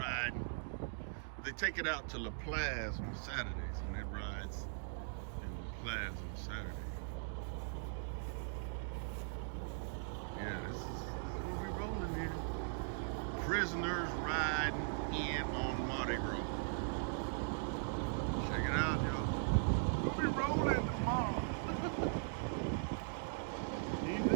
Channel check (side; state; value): left; silent; digital silence